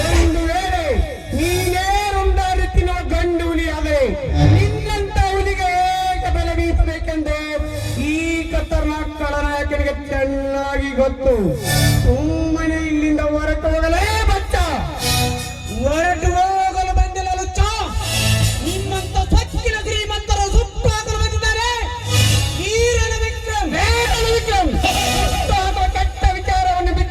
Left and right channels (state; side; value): identical; both; correlation 1.00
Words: ಒಂದು ವೇಳೆ ನೀನೇ ರುಂಡಾಡುತ್ತಿರೋ ಗಂಡು ಹುಲಿ ಆದರೆ ನಿನ್ನಂತ ಹುಲಿಗೆ ಹೇಗೆ ಬೆಲೆ ಬೀಸಬೇಕೆಂದು ಈ ಖತರ್ನಾಕ್ ಖಳನಾಯಕನಿಗೆ ಚೆನ್ನಾಗಿ ಗೊತ್ತು. ಸುಮ್ಮನೆ ಇಲ್ಲಿಂದ ಹೊರಟು ಹೋಗಲೇ ಬಚ್ಚ. ಹೊರಟು ಹೋಗಲು ಬಂದಿಲ್ಲ ಲುಚ್ಚ. ನಿಮ್ಮಂತ ಸಚ್ಚಿನ ಶ್ರೀಮಂತರು ಸುಟ್ಟು ಹಾಕಲು ಬಂದಿದ್ದಾರೆ. ವೀರನ ವಿಕ್ರಮ್ ಕೆಟ್ಟ ವಿಚಾರವನ್ನು